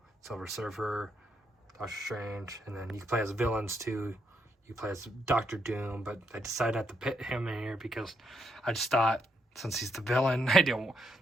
Silver Surfer, Doctor Strange, and then you can play as villains too. You play as Doctor Doom, but I decided not to put him in here because I just thought, since he's the villain,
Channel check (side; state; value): both; normal; correlation 0.78